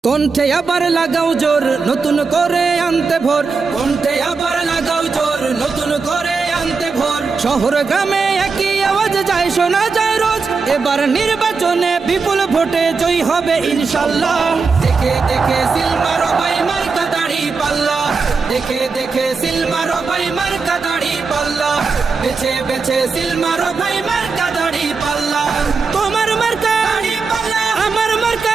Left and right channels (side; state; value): left; quieter; 4.7 dB